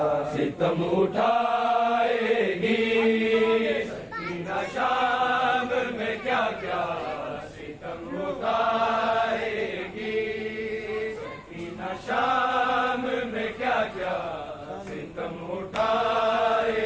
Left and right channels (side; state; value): both; identical; correlation 1.00